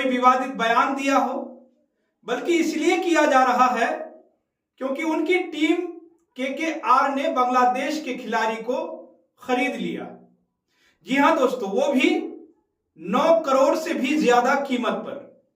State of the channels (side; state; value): both; identical; correlation 1.00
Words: विवादित बयान दिया हो, बल्कि इसलिए किया जा रहा है क्योंकि उनकी टीम KKR ने बांग्लादेश के खिलाड़ी को खरीद लिया। जी हां दोस्तों, वो भी 9 करोड़ से भी ज्यादा कीमत पर